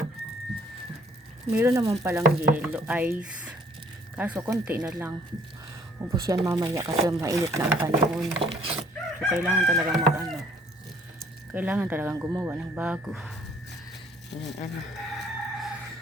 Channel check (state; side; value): normal; both; correlation 0.60